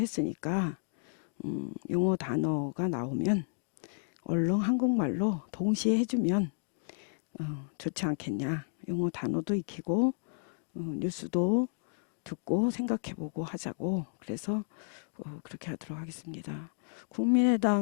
영어 단어가 나오면 얼른 한국말로 동시에 해주면 좋지 않겠냐. 영어 단어도 익히고 뉴스도 듣고 생각해보고 하자고. 그래서 그렇게 하도록 하겠습니다.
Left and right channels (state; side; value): silent; right; digital silence